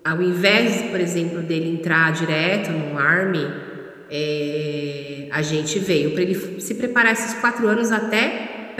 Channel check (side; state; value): both; identical; correlation 1.00